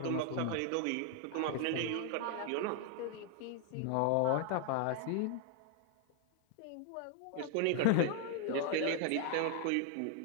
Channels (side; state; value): both; different; correlation 0.00